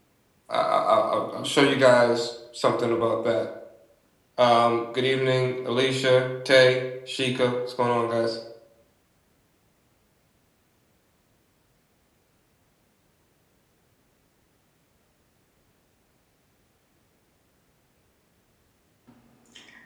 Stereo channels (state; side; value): identical; both; correlation 1.00